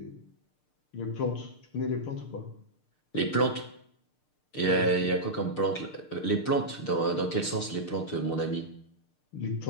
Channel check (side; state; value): right; late; 6.6 ms